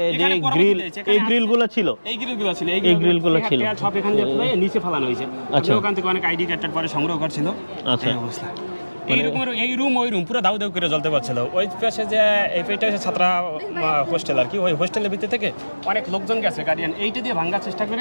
যে গ্রিল, এই গ্রিলগুলো ছিল, এই গ্রিলগুলো ছিল সব এখান দিয়ে ফেলে নিচে ফেলানো হয়েছে। আচ্ছা, ওখান থেকে অনেক আইডি কার্ড পরে সংগ্রহ করছিল। আচ্ছা, অবস্থা এই রুম পুরো দাউ দাউ করে জ্বলতে পারছিল। ওই পাশে যে এই পেটে ছাত্রা হোস্টেল আর কি, ওই হোস্টেলের ভিতর থেকে অনেক লোকজন গেছে গার্ডিয়ান, এইটা দিয়ে ভাঙার চেষ্টা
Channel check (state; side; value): inverted; both; correlation -1.00